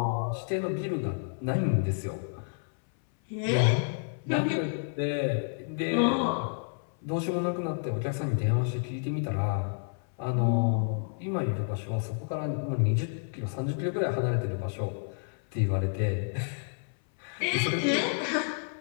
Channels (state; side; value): silent; right; 58 dB below the other